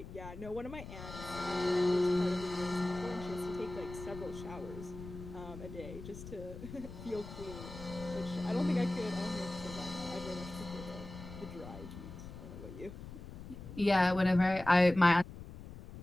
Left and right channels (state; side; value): noise; left; rumble, 12 dB below the sound